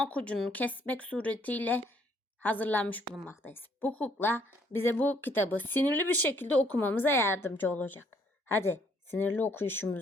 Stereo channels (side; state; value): both; normal; correlation 0.66